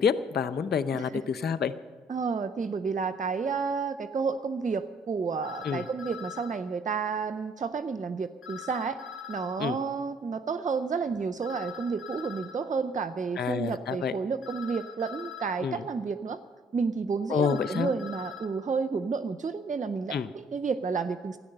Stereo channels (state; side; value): normal; both; correlation 0.61